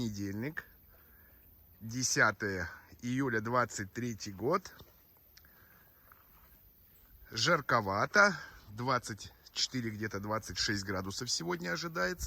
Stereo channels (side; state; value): both; identical; correlation 1.00